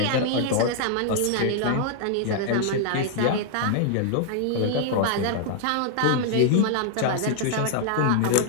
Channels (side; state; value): both; different; correlation -0.01